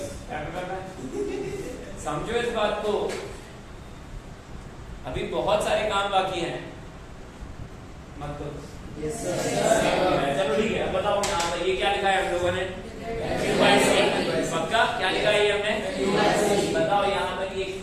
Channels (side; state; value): both; identical; correlation 1.00